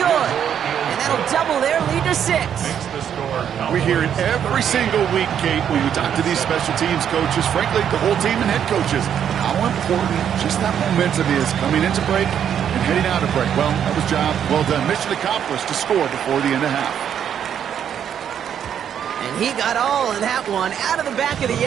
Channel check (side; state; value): left; quieter; 8.9 dB